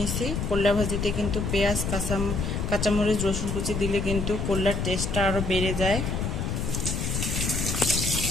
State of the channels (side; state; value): left; noise; rumble, 2 dB below the sound